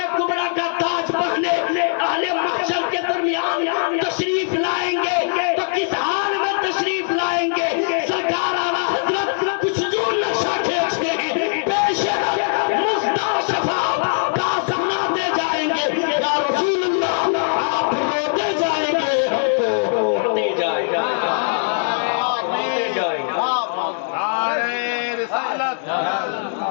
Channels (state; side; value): silent; right; digital silence